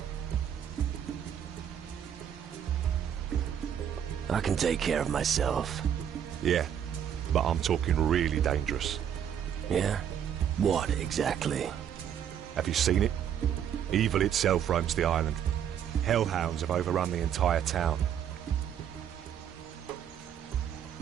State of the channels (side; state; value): left; quieter; 9.1 dB